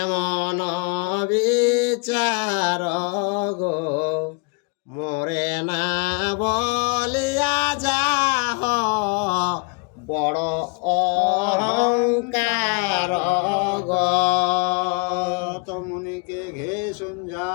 বিচার গো মোরে না বলিয়া যাহ বড় অহংকার গো। তো মুনিকে ঘে সন্ধ্যা,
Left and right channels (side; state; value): right; quieter; 34.4 dB